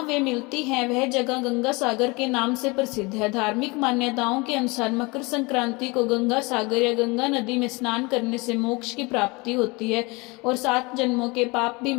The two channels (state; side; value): quieter; right; 26.2 dB